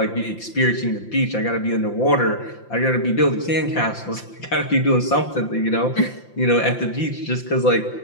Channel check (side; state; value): right; late; 5.8 ms